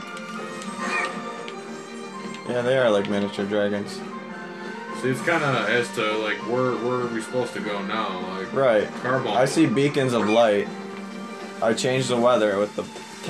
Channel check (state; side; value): identical; both; correlation 1.00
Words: Yeah, they are like miniature dragons. See, it's kind of as to like where are we supposed to go now? Like right. Carbon. I see beacons of light. I changed the weather with the